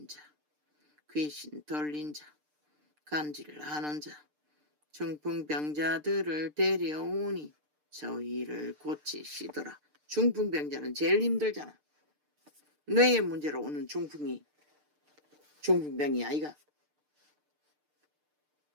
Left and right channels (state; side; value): late; left; 6.7 ms